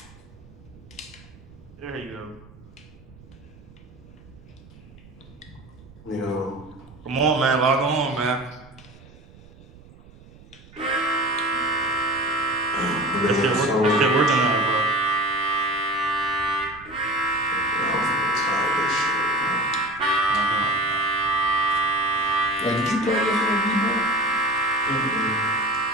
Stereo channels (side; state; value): right; noise; rumble, 23 dB below the sound